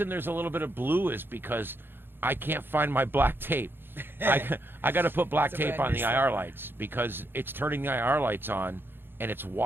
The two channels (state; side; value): late; left; 0.10 ms